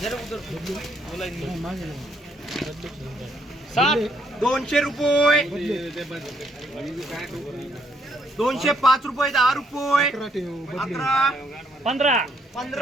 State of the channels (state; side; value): normal; both; correlation 0.71